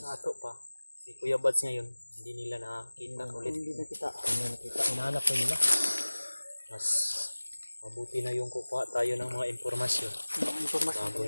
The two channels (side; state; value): both; inverted; correlation -1.00